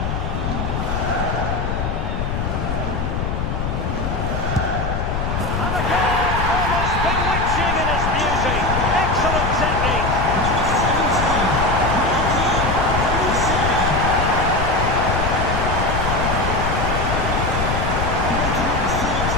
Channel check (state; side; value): noise; left; rumble, 2 dB below the sound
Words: And a goal! Almost bewitching in its beauty. Excellent technique.